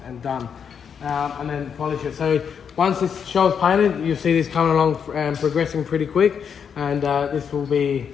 and done. And then polish it. So once this shell's painted, you'll see this coming along and progressing pretty quick, and this will be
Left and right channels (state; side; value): quieter; right; 7.2 dB